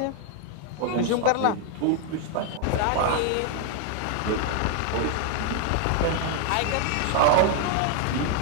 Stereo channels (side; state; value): both; different; correlation 0.00